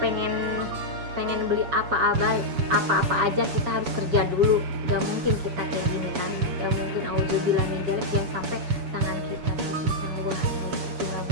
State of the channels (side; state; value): left; late; 7.0 ms